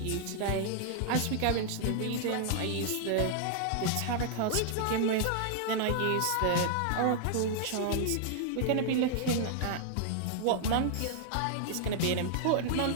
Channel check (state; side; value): different; both; correlation -0.01